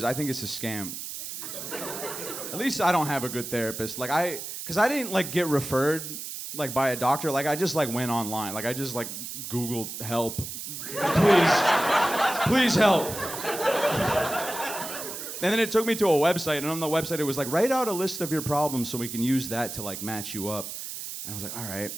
I think it's a scam. At least I don't have a good therapist. Because I didn't like get referred like by a doctor. Like I just like went online. Like I just like Googled help. Please help. And then it took me to a website, and on the website it was like, write out a list of your problems so we can use that to like match you up. And I was like, all right.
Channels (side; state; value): right; noise; hiss, 8 dB below the sound